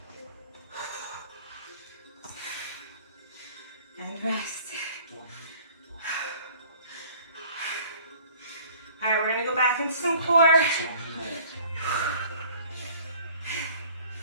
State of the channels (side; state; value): both; inverted; correlation -0.51